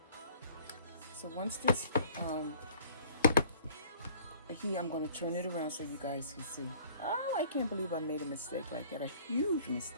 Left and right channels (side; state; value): both; inverted; correlation -0.52